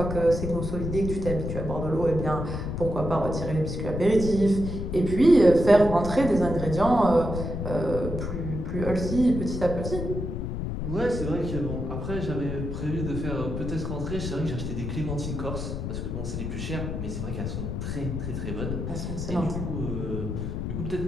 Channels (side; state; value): left; noise; rumble, 4 dB below the sound